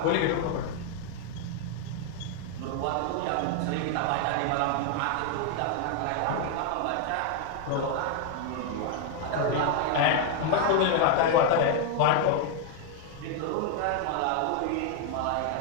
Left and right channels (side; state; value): both; different; correlation 0.00